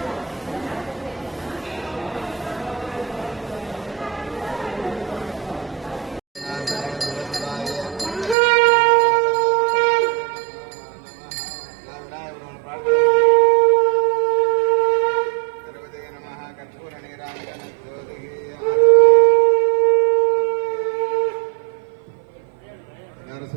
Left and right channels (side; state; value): left; drops out; at 8.3 s